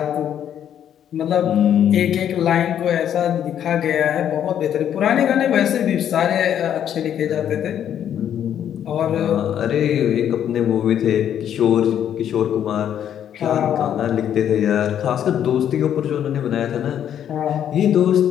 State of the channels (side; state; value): right; quieter; 9.8 dB